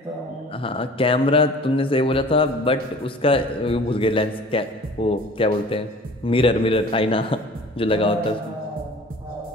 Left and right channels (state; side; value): normal; both; correlation 0.45